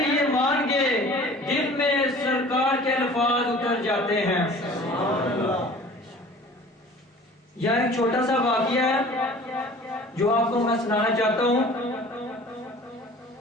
یہ مان گے، دل میں سرکار کے الفاظ اتر جاتے ہیں. یہ ایک چھوٹا سا واقعہ ہے جو آپ کو میں سنانا چاہتا ہوں.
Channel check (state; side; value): normal; both; correlation 0.46